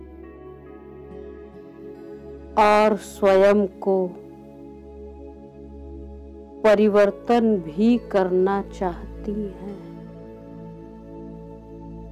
और स्वयं को परिवर्तन भी करना चाहती हैं।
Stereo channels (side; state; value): both; identical; correlation 1.00